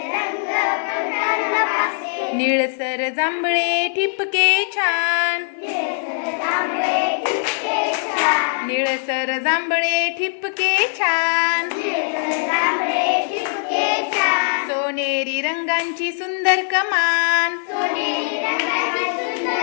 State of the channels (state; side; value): silent; right; digital silence